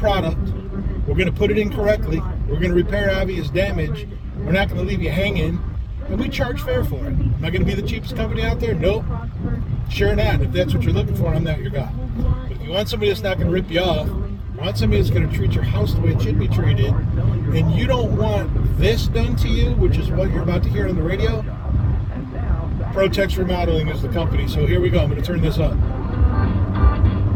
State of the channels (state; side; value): identical; both; correlation 1.00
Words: We're going to put it in correctly. We're going to repair obvious damage. We're not going to leave you hanging. And we charge fair for it. Am I going to be the cheapest company out there? Nope. Sure not. If that's what you're looking for, I'm not your guy. But if you want somebody that's not going to rip you off, you want somebody that's going to treat your house the way it should be treated, and you don't want this done to you, which is what you're about to hear on the radio, ProTex Remodeling is the company. So here we go. I'm going to turn this up.